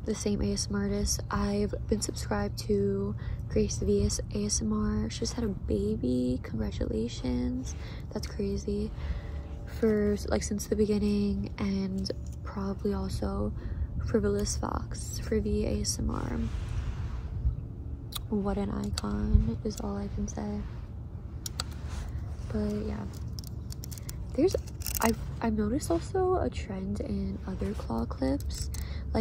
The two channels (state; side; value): identical; both; correlation 1.00